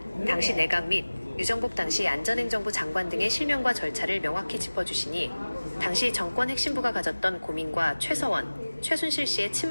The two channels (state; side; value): inverted; both; correlation -1.00